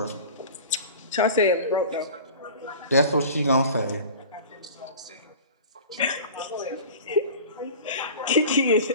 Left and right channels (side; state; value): both; inverted; correlation -0.39